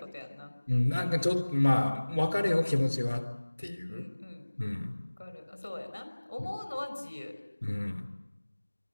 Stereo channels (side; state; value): both; inverted; correlation -1.00